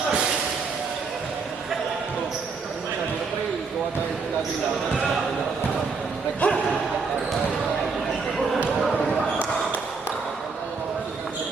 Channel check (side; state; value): left; quieter; 4.7 dB